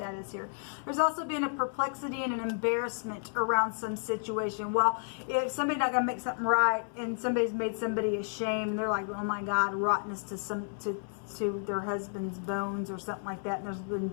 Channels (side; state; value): right; silent; 57 dB below the other